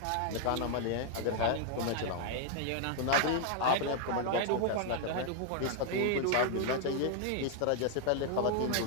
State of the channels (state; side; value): different; both; correlation 0.00